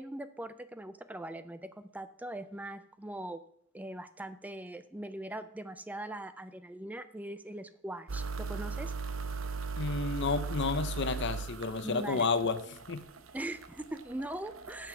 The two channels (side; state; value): both; normal; correlation 0.22